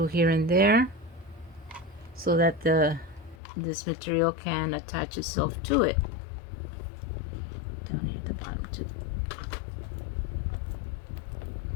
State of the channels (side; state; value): right; drops out; at 3.4 s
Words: here and there so that this material can attach itself to it. Down here at the bottom too.